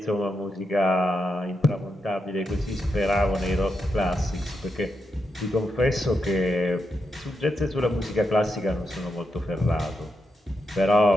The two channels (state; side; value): normal; both; correlation 0.84